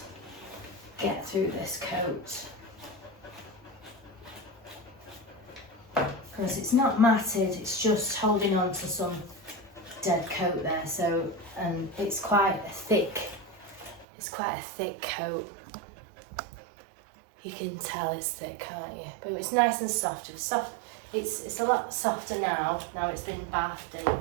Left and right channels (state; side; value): drops out; left; at 14.1 s